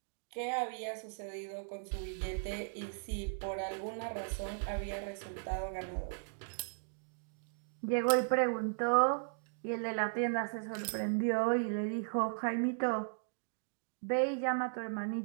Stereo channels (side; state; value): left; silent; digital silence